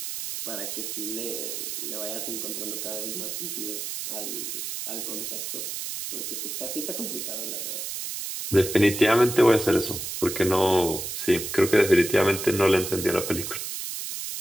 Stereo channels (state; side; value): noise; right; hiss, 5 dB below the sound